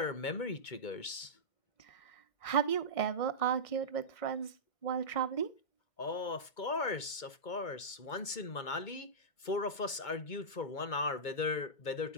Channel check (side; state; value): right; late; 2.2 ms